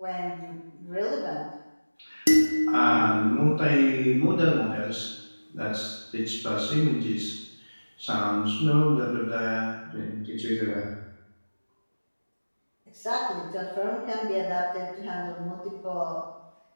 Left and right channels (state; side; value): inverted; both; correlation -1.00